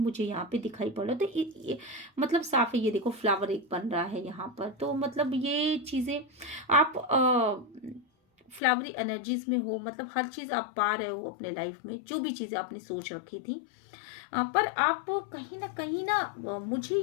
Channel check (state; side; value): drops out; right; at 8.6 s